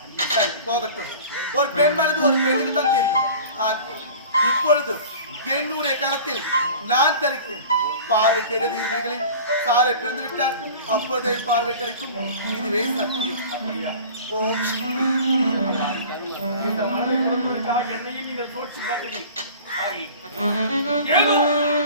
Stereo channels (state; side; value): inverted; both; correlation -0.41